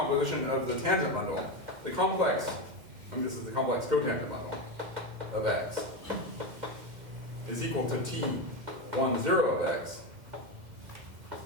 of the tangent bundle. The complex, this is the complex cotangent bundle of X, is equal to T10 of X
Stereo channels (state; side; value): late; left; 2.1 ms